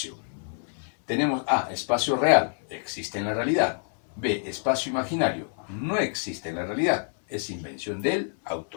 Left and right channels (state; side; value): silent; right; 60 dB below the other